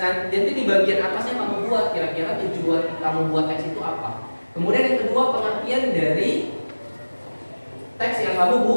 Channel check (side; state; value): both; inverted; correlation -1.00